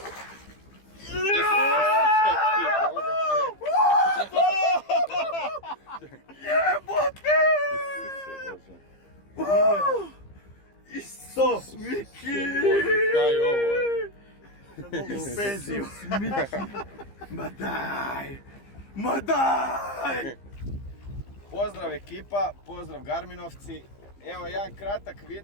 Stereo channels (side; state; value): right; late; 15 ms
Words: Jebote! Isus Miki! Kaj je ovo? U penziju. Ma daj! Pozdrav ekipa, pozdrav Garminovci. Evo jedan kratak